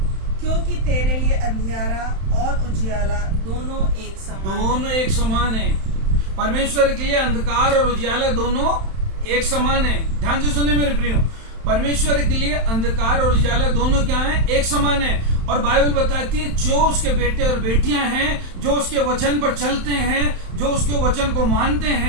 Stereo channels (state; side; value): late; left; 31 ms